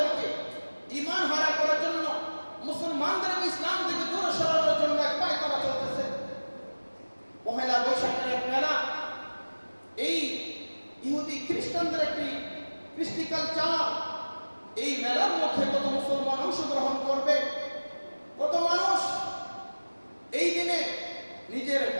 ঈমান হারা করার জন্য, মুসলমানদেরকে ইসলাম থেকে দূরে সরানোর জন্য এক পায়তারা চলতেছে। পহেলা বৈশাখের এক মেলা, এই ইহুদি খ্রিস্টানদের একটি কৃষ্টি কালচার, এই মেলার মধ্যে কত মুসলমান অংশগ্রহণ করবে, কত মানুষ এই দিনে নিজের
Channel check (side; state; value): both; inverted; correlation -1.00